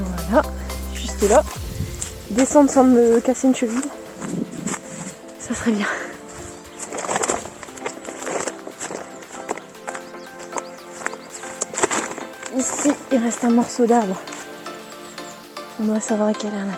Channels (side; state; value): both; identical; correlation 1.00